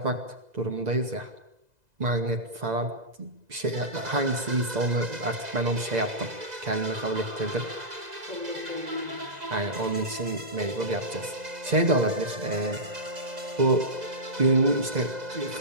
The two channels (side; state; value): left; late; 2.0 ms